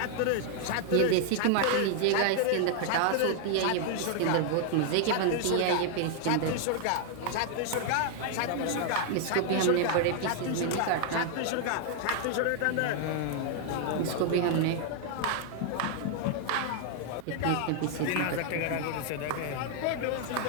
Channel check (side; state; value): both; different; correlation 0.00